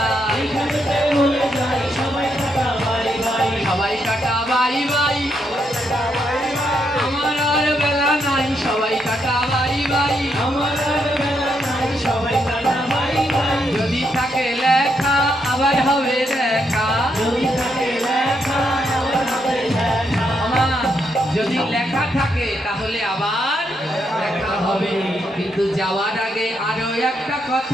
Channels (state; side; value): normal; both; correlation 0.78